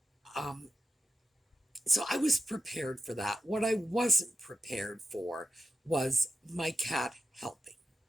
so I was prepared for that. What I wasn't prepared for was my cat helping.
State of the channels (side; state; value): both; normal; correlation 0.89